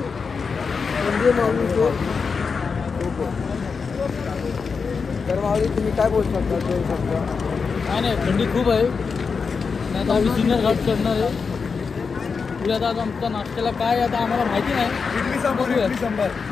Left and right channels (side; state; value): right; quieter; 5.3 dB